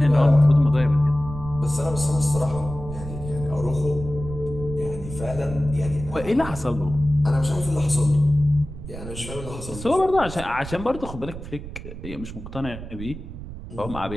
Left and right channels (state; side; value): noise; right; rumble, 11 dB below the sound